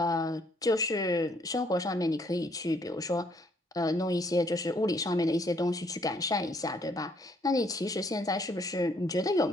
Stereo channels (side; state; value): both; normal; correlation 0.67